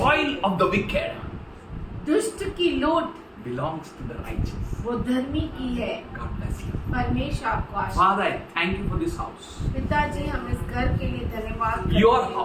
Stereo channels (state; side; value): identical; both; correlation 1.00